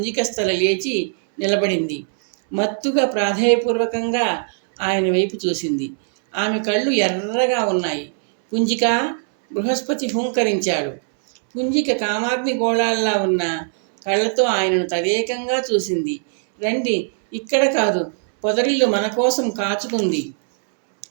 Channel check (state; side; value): silent; left; 66 dB below the other